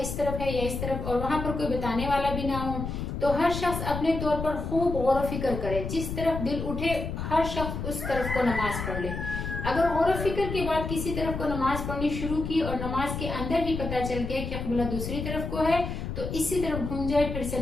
اس طرف ہے یا اس طرف، اور وہاں پر کوئی بتانے والا بھی نہ ہو، تو ہر شخص اپنے طور پر خوب غور و فکر کرے، جس طرف دل اٹھے ہر شخص اس طرف کو نماز پڑھ لے۔ اگر غور و فکر کے بعد کسی طرف کو نماز پڑھنی شروع کی اور نماز کے اندر ہی پتہ چل گیا کہ قبلہ دوسری طرف کو ہے تو اسی طرف گھوم جائے، پھر سے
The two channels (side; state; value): left; noise; rumble, 5 dB below the sound